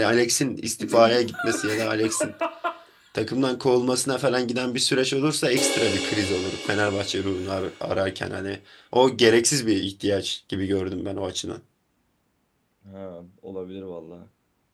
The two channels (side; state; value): both; identical; correlation 1.00